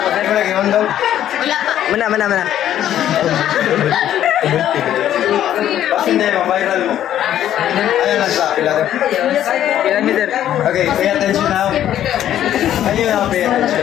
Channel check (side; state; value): right; quieter; 11.4 dB